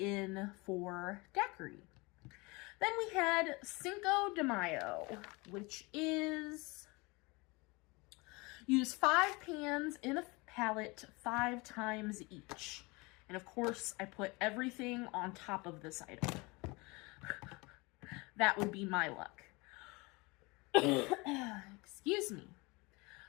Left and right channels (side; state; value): right; quieter; 25.8 dB